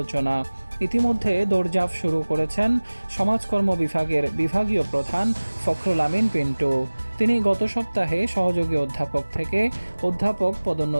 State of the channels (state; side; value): inverted; both; correlation -1.00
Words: ইতিমধ্যে দৌড়ঝাঁপ শুরু করেছেন সমাজকর্ম বিভাগের বিভাগীয় প্রধান ফখরুল আমিন পিন্টু। তিনি গত সপ্তাহে সহযোগী অধ্যাপক থেকে অধ্যাপক